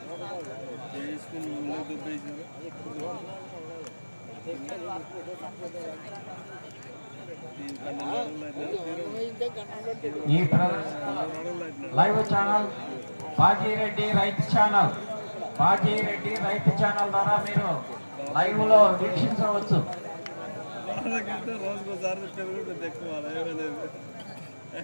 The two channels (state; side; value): inverted; both; correlation -1.00